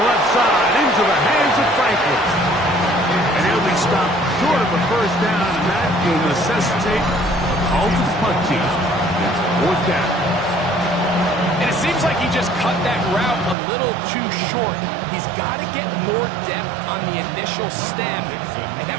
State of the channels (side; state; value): left; drops out; at 13.6 s